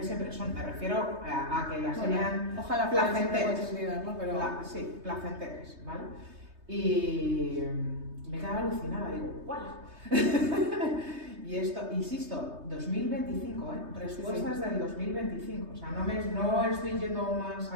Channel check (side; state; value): left; late; 3.2 ms